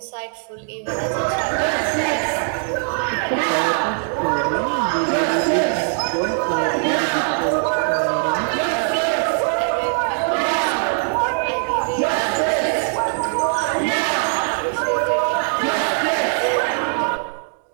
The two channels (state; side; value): silent; left; 57 dB below the other